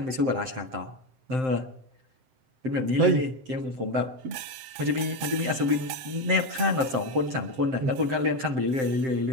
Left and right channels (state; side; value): late; left; 7.7 ms